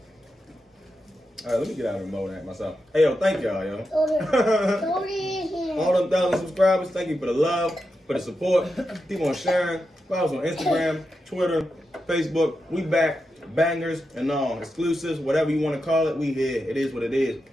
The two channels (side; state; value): both; normal; correlation 0.88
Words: All right, let me get out of the mode at myself. Hey, yo, thank y'all, yo. All them 1,000 subscribers, thank you for the love, for the support. Keep on sharing. Follow us on Instagram, Twitter, Facebook. We back. Bangers and all. Exclusives, whatever you want to call it, we here. It is what it is.